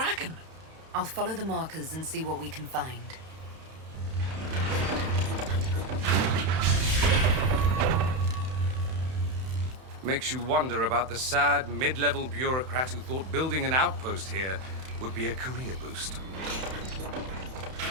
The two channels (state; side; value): late; left; 31 ms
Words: I'll follow the markers and see what we can find. Makes you wonder about the sad, mid-level bureaucrat who thought building an outpost here would be a career boost.